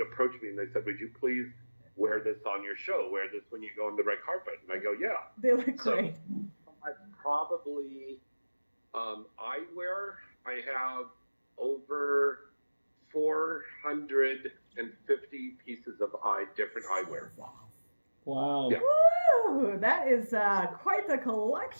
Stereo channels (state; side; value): inverted; both; correlation -1.00